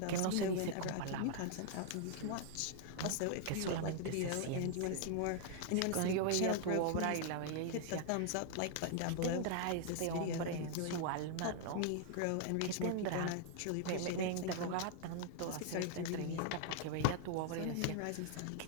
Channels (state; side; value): different; both; correlation 0.00